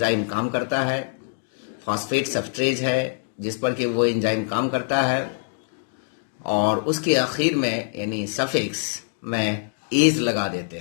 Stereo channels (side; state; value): right; silent; digital silence